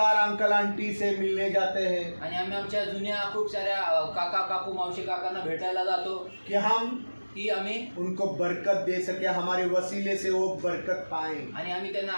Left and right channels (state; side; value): inverted; both; correlation -1.00